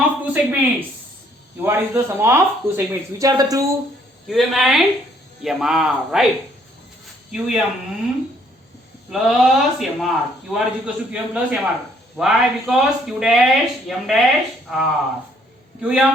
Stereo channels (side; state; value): both; normal; correlation 0.65